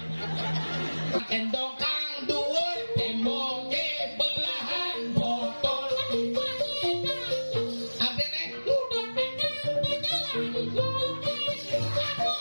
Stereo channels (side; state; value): both; inverted; correlation -1.00